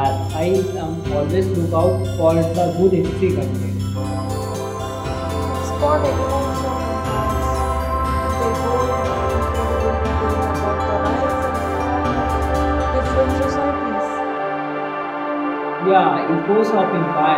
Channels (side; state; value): both; identical; correlation 1.00